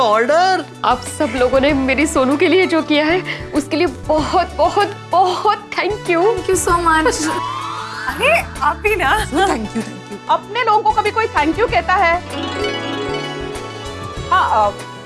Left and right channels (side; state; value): both; identical; correlation 1.00